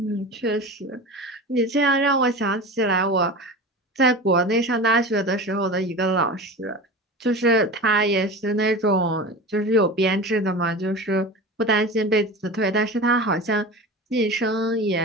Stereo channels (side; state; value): both; normal; correlation 0.31